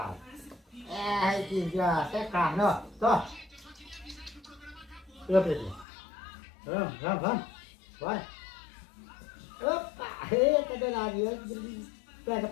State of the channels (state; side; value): drops out; right; at 5.9 s